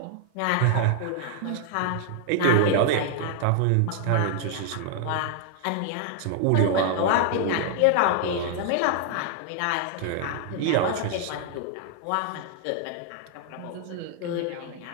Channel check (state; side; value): different; both; correlation 0.00